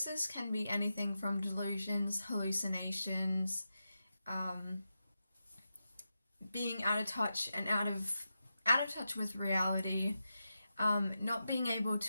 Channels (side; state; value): both; inverted; correlation -0.89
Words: can be anything from delusions, hallucinations, being out of touch and out of touch with reality, not being able